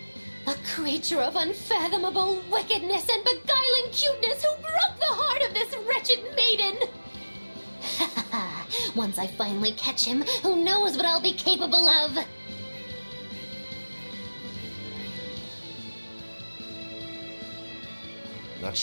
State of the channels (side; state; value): both; inverted; correlation -1.00